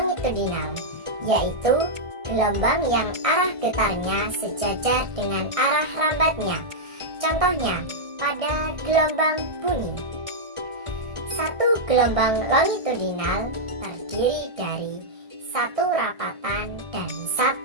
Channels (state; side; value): late; left; 1.6 ms